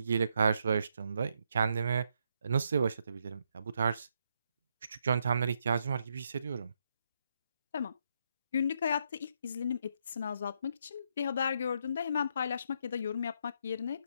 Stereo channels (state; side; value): inverted; both; correlation -0.77